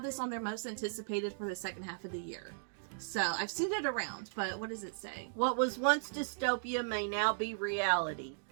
this on their most anticipated for the second half of the year. So I've seen it around, but what does it say? What was once dystopia may now be reality.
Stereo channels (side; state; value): left; silent; digital silence